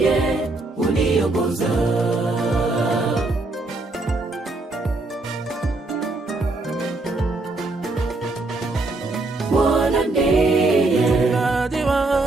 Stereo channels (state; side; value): quieter; left; 3.1 dB